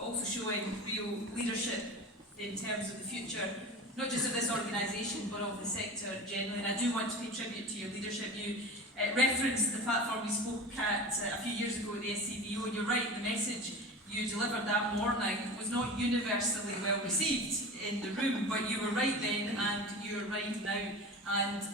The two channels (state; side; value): normal; both; correlation 0.32